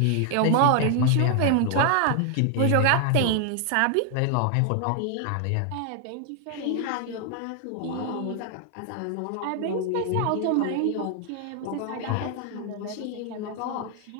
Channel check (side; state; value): both; different; correlation 0.00